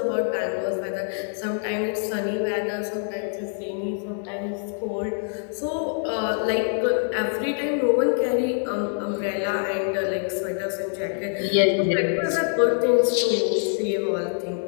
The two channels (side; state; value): right; silent; 57 dB below the other